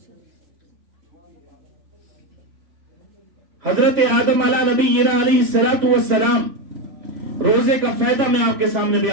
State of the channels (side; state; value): left; late; 3.4 ms